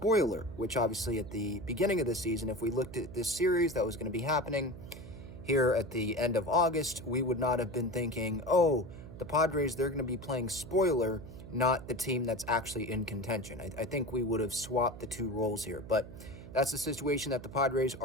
which obviously at the beginning of the season, if we looked at this series that was going to be happening here at the end of August, we would not have been thinking, oh, the Padres, they're going to be playing spoiler, not the team that's actually in contention. I think we would have swapped the two roles here, but that's the situation that the Padres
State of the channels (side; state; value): right; noise; hum, 14 dB below the sound